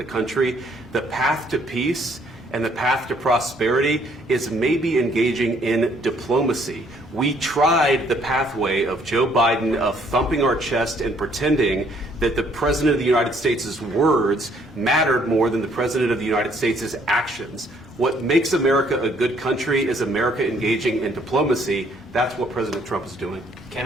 country. The path to peace and the path to prosperity is maybe engaging in diplomacy. We tried the pathway of Joe Biden of thumping our chest and pretending that the President of the United States' words mattered more than the President of the United States' actions. What makes America a good country is America engaging in diplomacy. That's what President Trump is doing. Can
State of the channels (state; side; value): normal; both; correlation 0.65